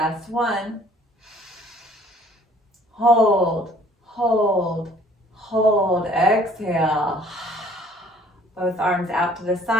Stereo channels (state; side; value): normal; both; correlation 0.56